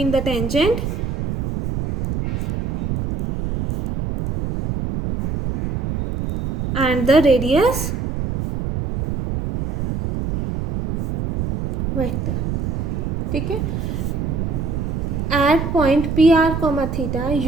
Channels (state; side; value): noise; right; rumble, 3 dB below the sound